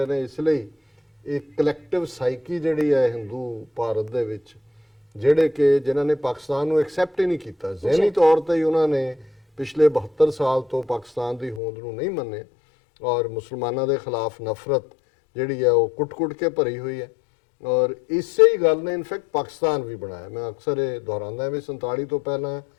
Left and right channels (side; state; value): right; drops out; at 11.6 s